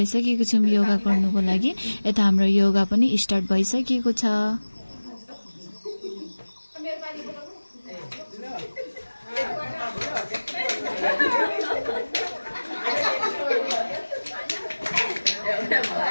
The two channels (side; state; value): both; inverted; correlation -1.00